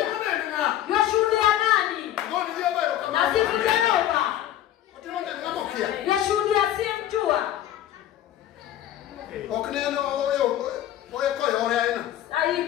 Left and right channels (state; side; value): quieter; right; 12.2 dB